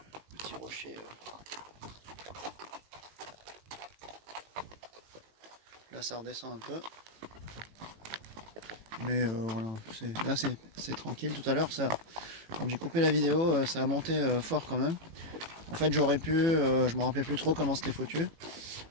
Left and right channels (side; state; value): left; late; 18 ms